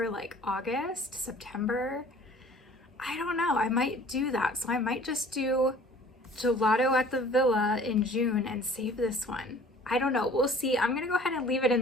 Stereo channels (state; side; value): normal; both; correlation 0.50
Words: like August, September. I don't know, I might do that. So I might just do Gelato at the Villa in June and save this one. I don't know, we'll see. I'm gonna go ahead and leave it